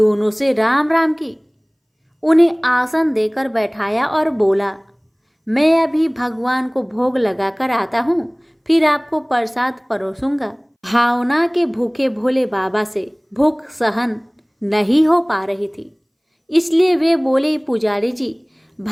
से राम राम की, उन्हें आसन देकर बैठाया और बोला, मैं अभी भगवान को भोग लगाकर आता हूँ, फिर आपको प्रसाद परोसूंगा। भावना के भूखे भोले बाबा से भूख सहन नहीं हो पा रही थी, इसलिए वे बोले, पुजारी जी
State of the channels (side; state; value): both; identical; correlation 1.00